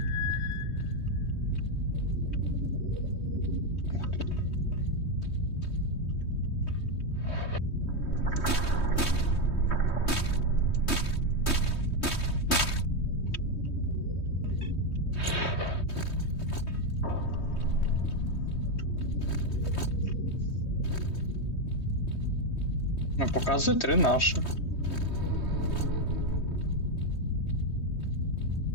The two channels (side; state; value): right; late; 3.2 ms